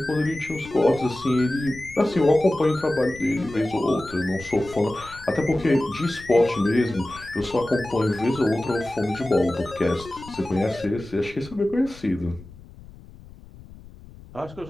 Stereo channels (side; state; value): left; noise; rumble, 19 dB below the sound